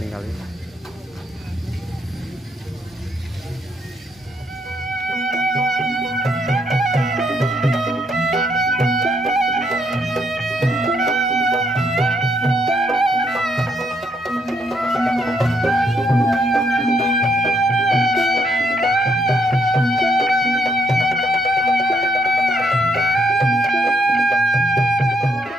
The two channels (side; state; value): both; normal; correlation 0.73